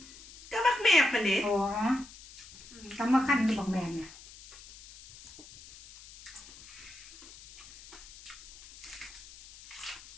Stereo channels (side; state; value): left; noise; hiss, 19 dB below the sound